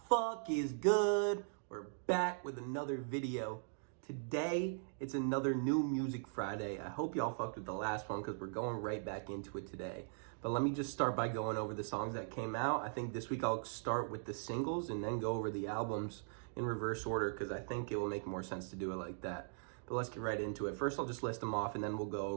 fuck is good. We're back with another video. Today, it's another new Music Friday. I hope y'all fucked with the last one because we're going right back into it today. But let me just start by going over the songs that came out. I think this week I'll start with the singles and then go over the albums in reverse order because I think it will make more sense to do it like that. But let's get right into it. First, I'll just list them off and then we'll go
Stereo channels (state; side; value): silent; left; digital silence